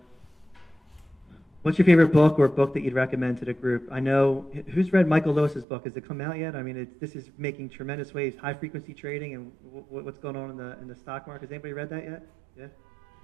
what's your favorite book or book that you'd recommend to the group? I know, who's read Michael Lewis's book? Has it come out yet? I mean, this is making tremendous waves, high frequency trading and what's going on in the stock market. Has anybody read that yet? Yeah?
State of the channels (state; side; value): drops out; left; at 5.7 s